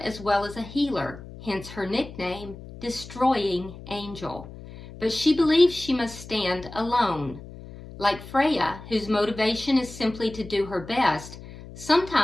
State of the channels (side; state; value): left; noise; hum, 15 dB below the sound